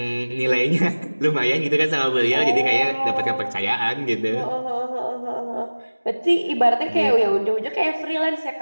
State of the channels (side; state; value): both; inverted; correlation -1.00